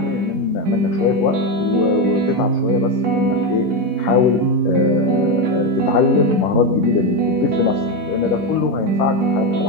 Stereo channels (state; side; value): normal; both; correlation 0.11